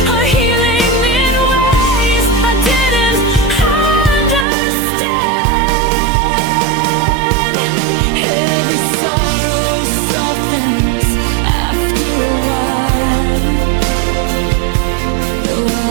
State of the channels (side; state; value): left; drops out; at 4.5 s